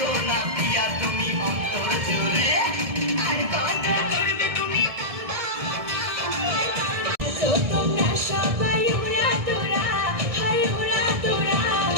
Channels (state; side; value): late; left; 1.7 ms